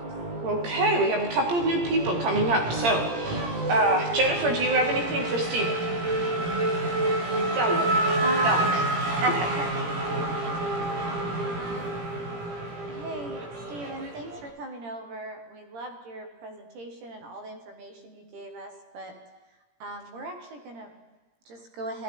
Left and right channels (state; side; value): late; left; 17 ms